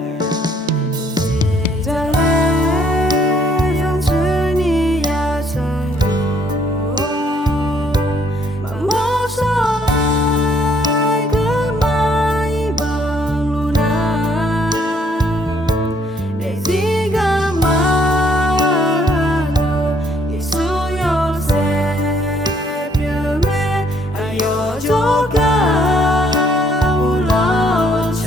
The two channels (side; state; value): both; normal; correlation 0.66